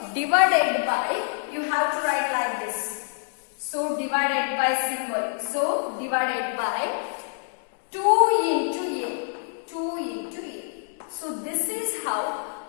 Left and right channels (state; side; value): silent; right; digital silence